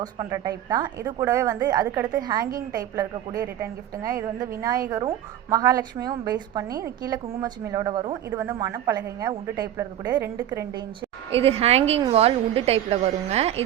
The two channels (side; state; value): left; quieter; 11.5 dB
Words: பண்ணுற டைப் தான். இது கூடவே வந்து அதுக்கடுத்து ஹேங்கிங் டைப்பில் இருக்கக்கூடிய ரிட்டன் கிஃப்ட்டுங்க. இது வந்து விநாயகரும் மகாலட்சுமியும் பேஸ் பண்ணி கீழே குங்குமச்சிமிழோட வரும். இது வந்து மணப்பலகைங்க, உட்டு டைப்பில் இருக்கக்கூடிய 2x2 இன்ச்சு. இது ஹேங்கிங் வால் உட்டு டைப்பில் வருங்க.